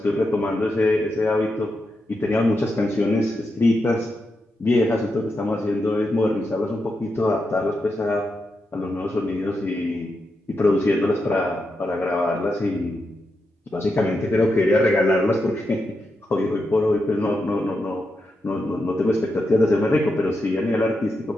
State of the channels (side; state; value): both; normal; correlation 0.86